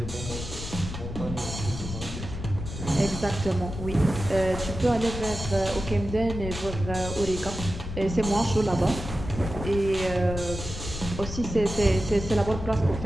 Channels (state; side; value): noise; left; rumble, 7 dB below the sound